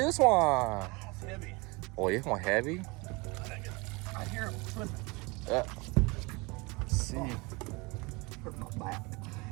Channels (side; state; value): left; quieter; 26.4 dB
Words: one? It's heavy. Oh, this one heavy. I hear him slipping. Let's see. Hurt my back.